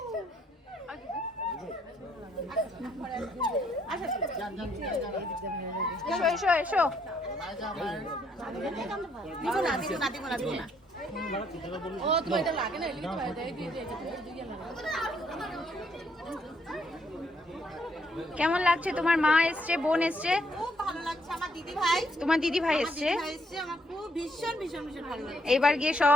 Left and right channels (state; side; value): normal; both; correlation 0.71